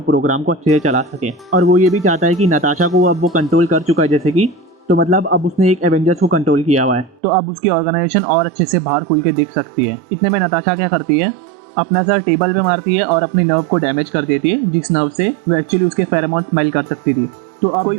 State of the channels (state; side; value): drops out; left; at 7.2 s